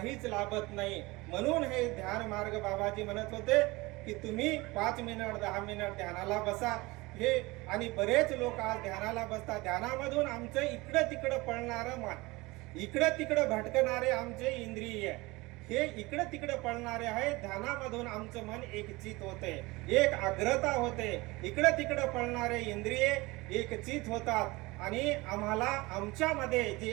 लाभत नाही. म्हणून हे ध्यान मार्ग बाबाजी म्हणत होते की तुम्ही 5 मिनिट 10 मिनिट ध्यानाला बसा. हे आणि बरेच लोक आज ध्यानाला बसतात. ध्यानामधून आमचं इकडं तिकडं पळणारं मन, इकडं तिकडं भटकणारे आमचे इंद्रिय, हे इकडं तिकडं पळणारे आहे. ध्यानामधून आमचं मन एकचित होते, एक आग्रता होते. इकडं तिकडं पळणारे इंद्रिय एकचित होतात आणि आम्हाला आमच्यामध्ये जी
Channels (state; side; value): quieter; left; 22.4 dB